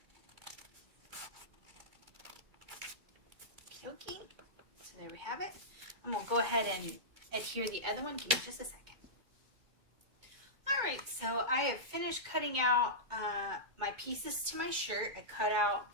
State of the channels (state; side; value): late; left; 2.3 ms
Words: Okay, so there we have it. I'm going to go ahead and adhere the other one. Give me just a second. Alright, so I have finished cutting out my pieces to my shirt. I cut out